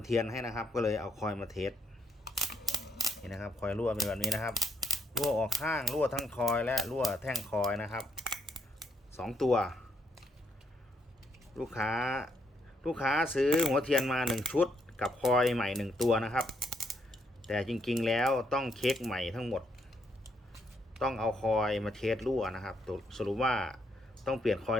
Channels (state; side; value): normal; both; correlation 0.75